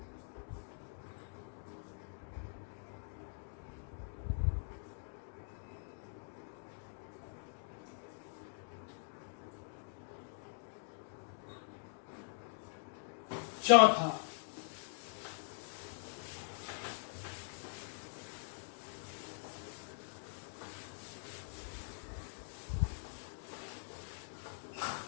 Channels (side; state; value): right; silent; digital silence